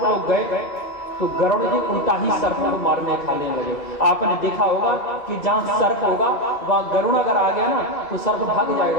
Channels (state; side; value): late; right; 1.9 ms